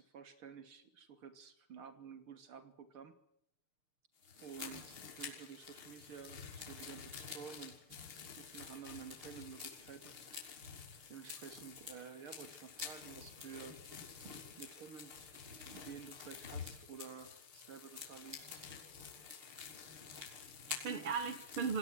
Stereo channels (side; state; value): left; late; 6.6 ms